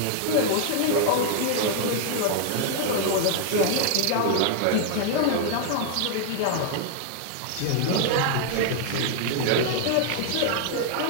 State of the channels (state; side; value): different; both; correlation 0.00